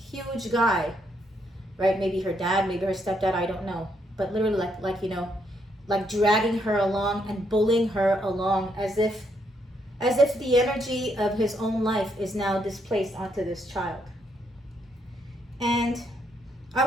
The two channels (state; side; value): normal; both; correlation 0.75